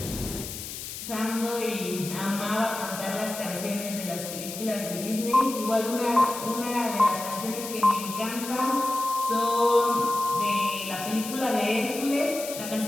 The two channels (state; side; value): noise; left; hiss, 9 dB below the sound